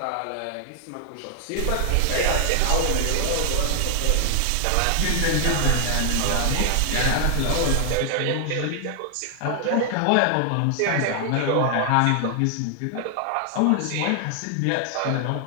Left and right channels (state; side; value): different; both; correlation 0.00